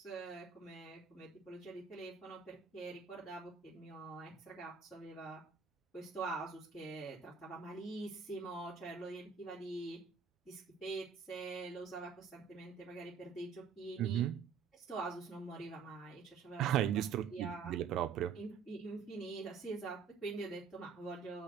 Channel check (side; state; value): left; quieter; 6.4 dB